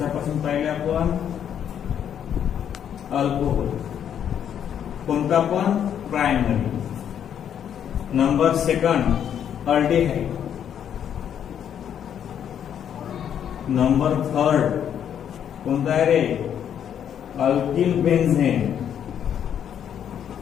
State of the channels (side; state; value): right; quieter; 9.1 dB